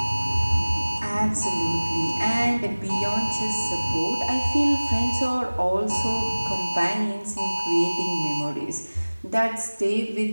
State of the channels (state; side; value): inverted; both; correlation -1.00